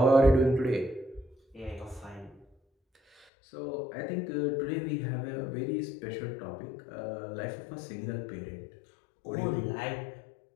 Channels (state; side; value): drops out; right; at 3.2 s